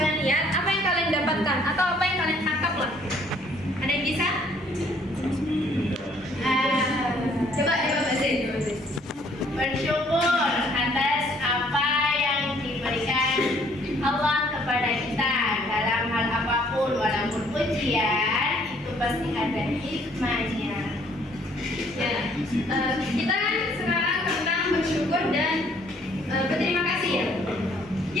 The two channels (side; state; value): both; normal; correlation 0.62